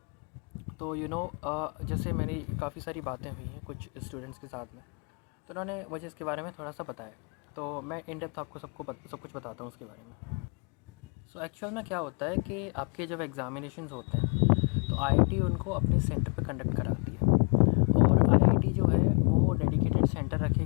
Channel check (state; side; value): quieter; right; 39.1 dB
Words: तो जैसे मेरी काफ़ी सारी बातें हुई हैं कुछ स्टूडेंट्स के साथ में, तो उन्होंने मुझे इसके बारे में थोड़ा सा बताया। तो मैं इन डेप्थ आपको सब कुछ बताता हूँ उसके बारे में। सो एक्चुअल में क्या होता है कि आपके जब एग्ज़ामिनेशंस होते हैं तो आईआईटी उनको अपने सेंटर पे कंडक्ट कराती है। और आईआईटी जो है वो डेडिकेटेड सेंटर रखे